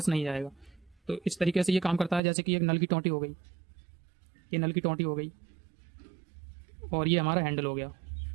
नहीं जाएगा। तो इस तरीके से ये काम करता है। जैसे कि एक नल की टोंटी हो गई, ये नल की टोंटी हो गई और ये हमारा हैंडल हो गया।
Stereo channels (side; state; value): left; drops out; at 2.2 s